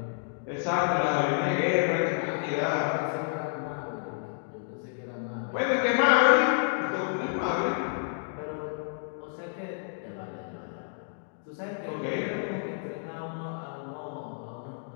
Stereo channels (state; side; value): silent; right; digital silence